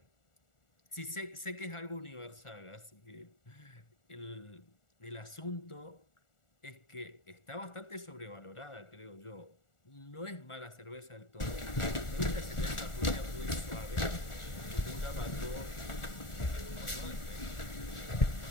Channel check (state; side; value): late; right; 1.4 ms